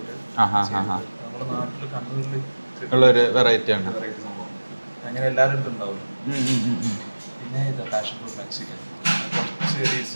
ഉള്ളൊരു വെറൈറ്റി ആണ്. അങ്ങനെ എല്ലാവരും ഉണ്ടാവും. പിന്നെ passion fruit Mexican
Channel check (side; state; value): both; inverted; correlation -1.00